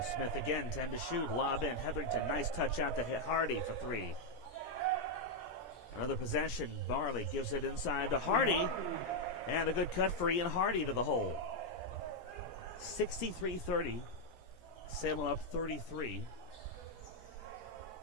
Smith again, 10 to shoot. Lob in. Hetherington, nice touch out to hit Hardy for 3. Another possession. Barley gives it inside to Hardy. And a good cut for Ian Hardy to the hole. 63-30. Salem up 33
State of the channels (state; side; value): late; right; 17 ms